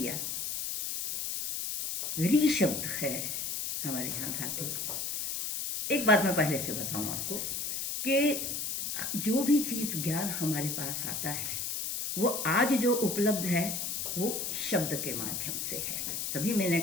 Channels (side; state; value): left; noise; hiss, 2 dB below the sound